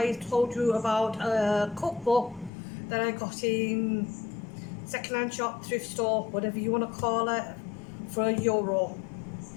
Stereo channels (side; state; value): right; drops out; at 2.5 s